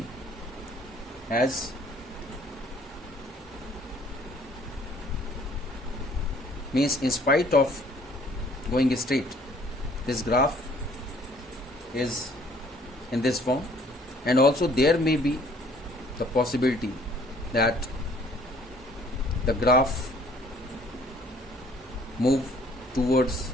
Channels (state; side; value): normal; both; correlation 0.58